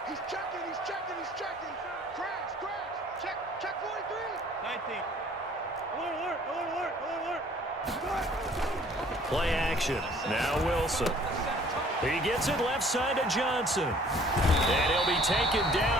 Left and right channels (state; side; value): normal; both; correlation 0.55